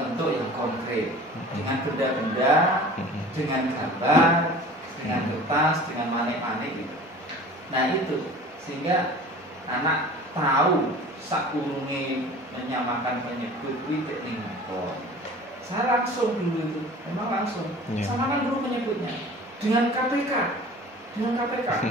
yang konkret, dengan benda-benda, dengan gambar, dengan kertas, dengan manik-manik gitu. Nah itu sehingga anak tahu sakurunge menyamakan penyebut witik ning ngoko. Saya langsung dulu itu, memang langsung samakan dulu penyebutnya dengan KPK,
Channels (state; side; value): normal; both; correlation 0.43